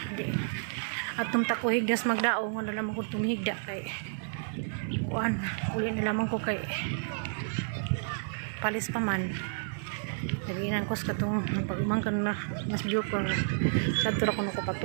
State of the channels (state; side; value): silent; left; 57 dB below the other